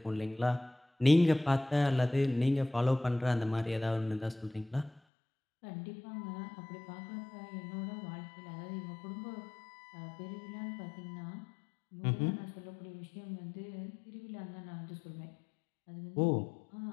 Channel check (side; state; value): right; drops out; at 5.0 s